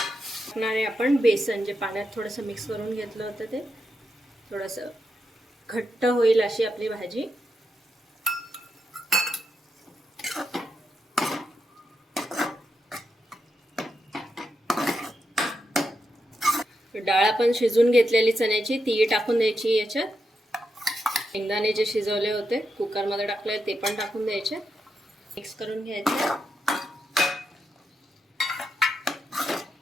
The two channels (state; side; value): normal; both; correlation 0.85